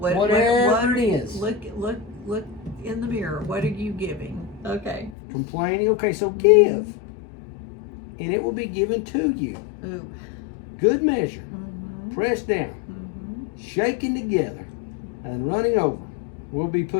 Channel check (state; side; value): drops out; right; at 5.2 s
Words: it is. Look in the mirror. What are you giving? Okay. Complaining. Okay, so give. And it will be given to you. Ooh. Good measure. Pressed down. Shaken together. And running over will be